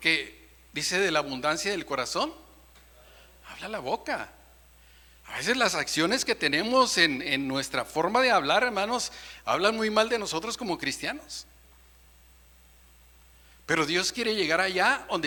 dice, de la abundancia del corazón habla la boca. A veces las acciones que tenemos en nuestra forma de hablar, hermanos, hablan muy mal de nosotros como cristianos. Pero Dios quiere llegar allá donde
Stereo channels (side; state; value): both; identical; correlation 1.00